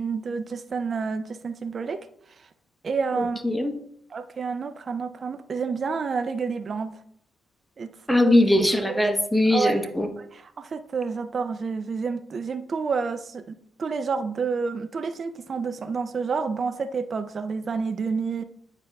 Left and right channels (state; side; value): normal; both; correlation 0.87